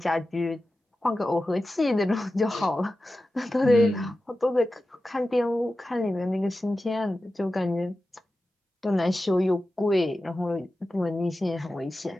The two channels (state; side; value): normal; both; correlation 0.93